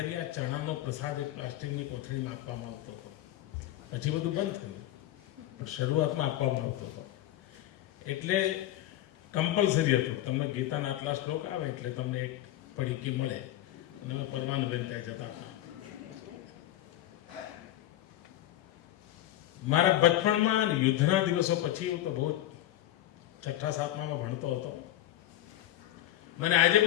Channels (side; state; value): right; quieter; 13.5 dB